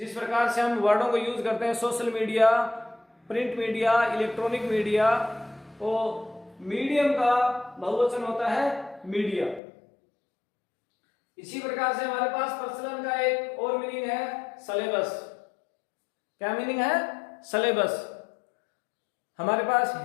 प्रकार से हम वर्डों को यूज करते हैं social media, print media, electronic media, तो मीडियम का बहुवचन होता है मीडिया। इसी प्रकार से हमारे पास प्रचलन का एक और मीनिंग है सिलेबस। क्या मीनिंग है? सिलेबस। हमारे पास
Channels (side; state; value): right; drops out; at 9.6 s